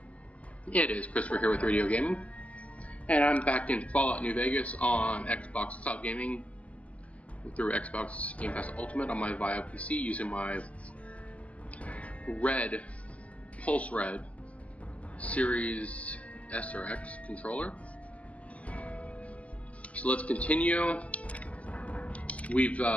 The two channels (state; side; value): late; right; 0.068 ms